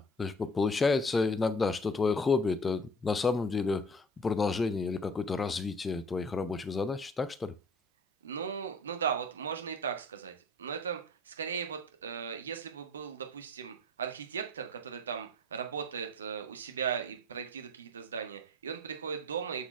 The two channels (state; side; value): normal; both; correlation 0.49